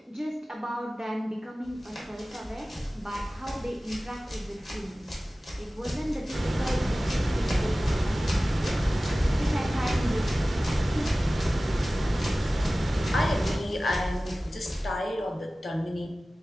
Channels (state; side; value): normal; both; correlation 0.97